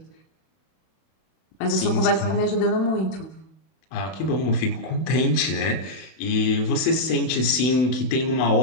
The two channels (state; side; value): late; right; 31 ms